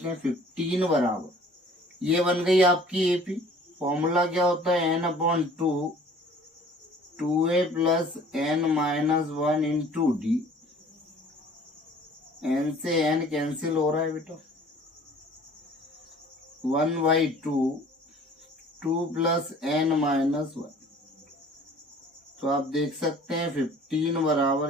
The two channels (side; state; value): both; normal; correlation 0.51